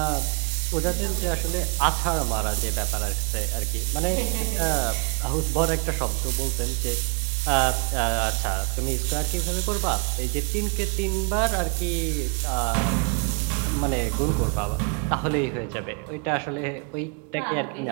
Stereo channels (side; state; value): left; quieter; 33.9 dB